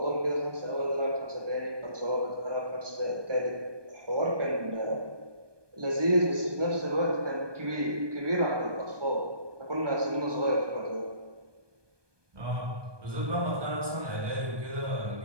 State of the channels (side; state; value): left; late; 1.2 ms